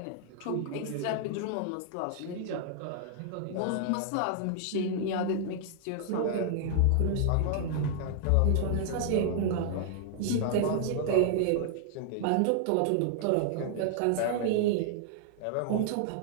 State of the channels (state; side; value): different; both; correlation -0.01